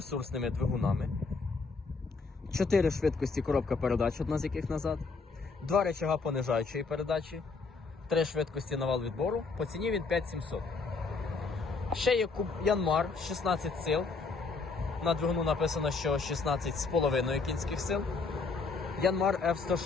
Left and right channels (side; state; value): right; quieter; 4.3 dB